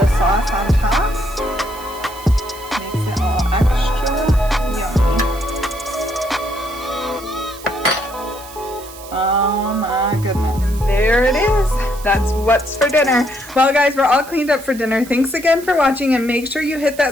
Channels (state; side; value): noise; right; hiss, 17 dB below the sound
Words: sauce on top. Makes it all extra yummy. Oh my goodness. And there it is. That's what's for dinner. Well guys, we're all cleaned up for dinner. Thanks again for watching, and make sure you hit